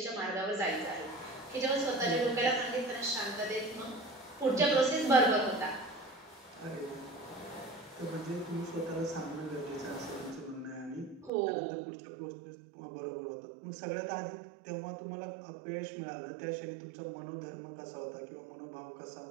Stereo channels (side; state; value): left; drops out; at 11.3 s